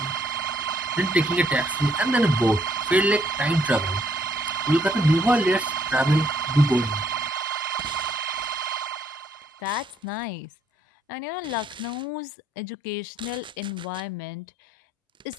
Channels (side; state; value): both; normal; correlation 0.69